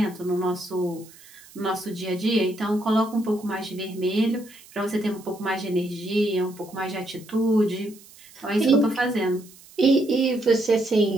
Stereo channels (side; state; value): right; noise; hiss, 23 dB below the sound